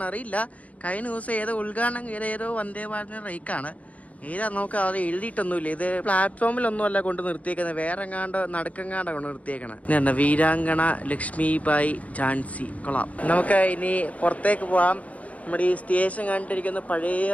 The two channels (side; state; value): right; late; 0.068 ms